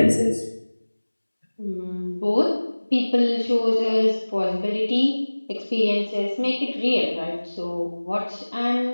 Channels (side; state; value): both; inverted; correlation -1.00